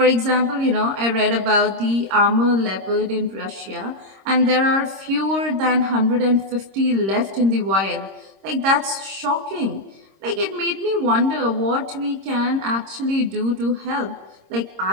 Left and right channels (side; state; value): left; late; 26 ms